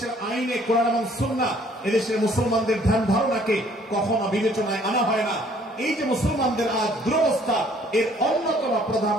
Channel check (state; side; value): normal; both; correlation 0.60